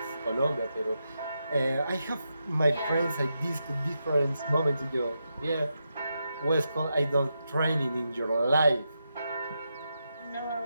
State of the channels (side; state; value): both; inverted; correlation -0.86